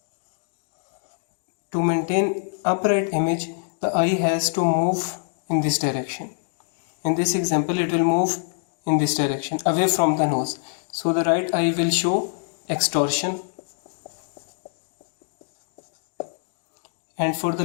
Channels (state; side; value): silent; right; digital silence